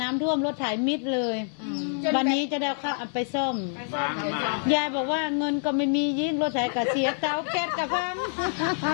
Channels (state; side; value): silent; right; 60 dB below the other